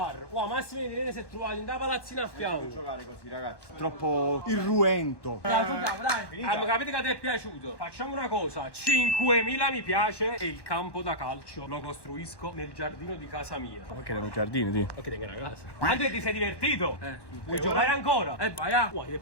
Wow, Massimo e Irene si è trovato in da palazzina a fianco. Giocare così, ragazzi. Troppo irruento. Dai. Capite che ti è piaciuto? Facciamo una cosa: 5.000 mi piace e il campo da calcio lo costruisco nel giardino di casa mia. Ok, erano giardini, ti. E che tengo una casa. Andrea, ti sei divertito? Vuoi giocare ancora? Vai a. Ti è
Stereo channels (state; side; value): late; right; 1.1 ms